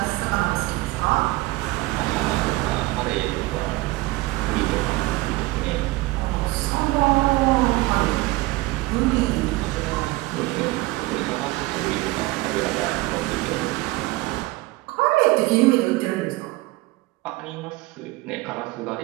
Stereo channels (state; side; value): quieter; left; 20.5 dB